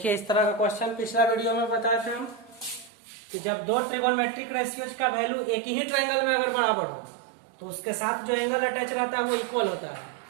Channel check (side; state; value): left; drops out; at 2.9 s